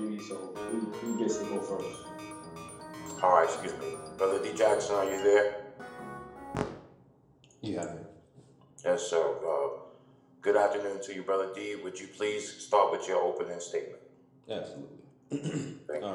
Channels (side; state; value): both; identical; correlation 1.00